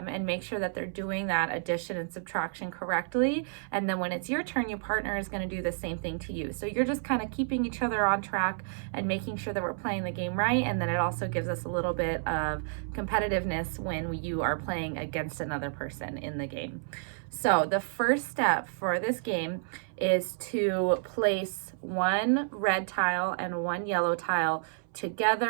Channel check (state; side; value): silent; left; 58 dB below the other